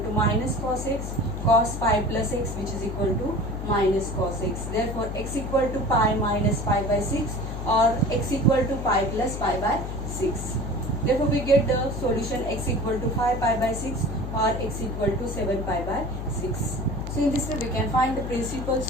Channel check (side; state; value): left; noise; hum, 6 dB below the sound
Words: minus cos x, cos pi plus x, which is equal to minus cos x. Therefore, x equal to pi minus pi by 6 or x equal to pi plus pi by 6. Therefore, we get the solution x equal to 5 pi by 6 or x equal to 7 pi by 6. So, in this way, we can find the principal